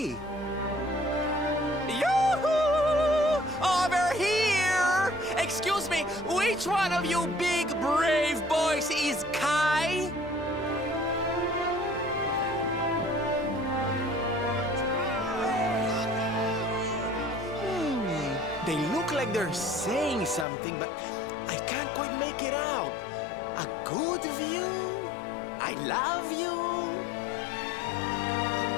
Yoo-hoo! Over here! Excuse me, which one of you big brave boys is Kai? They look like they're saying something, but I can't quite make it out. A good view? I love you?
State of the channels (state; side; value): drops out; right; at 20.5 s